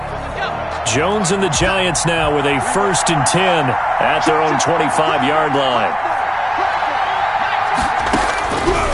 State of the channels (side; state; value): both; identical; correlation 1.00